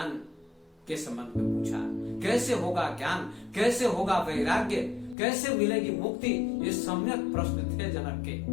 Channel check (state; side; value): drops out; right; at 5.2 s